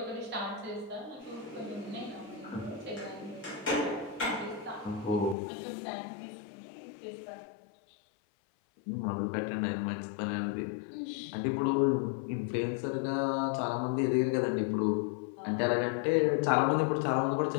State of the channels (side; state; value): right; drops out; at 5.4 s